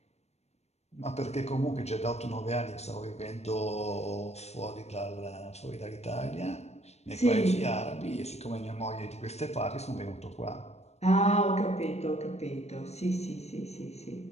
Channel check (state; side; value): late; right; 0.31 ms